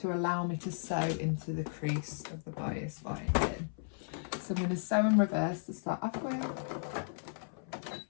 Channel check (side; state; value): right; silent; 54 dB below the other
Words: allow me to sew into the crease of the bias binding. So I'm going to sew in reverse to start off with.